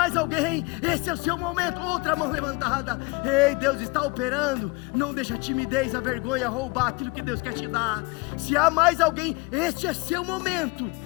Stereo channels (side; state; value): right; quieter; 25.9 dB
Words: alguém? Esse é o seu momento, outra mão levantada. Ei, Deus está operando. Não deixa a timidez, a vergonha roubar aquilo que Deus quer te dar. Se há mais alguém, este é seu momento.